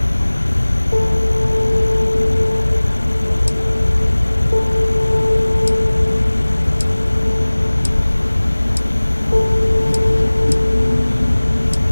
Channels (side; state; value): both; inverted; correlation -1.00